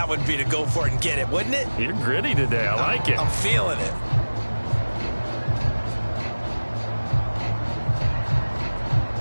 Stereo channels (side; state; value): both; inverted; correlation -1.00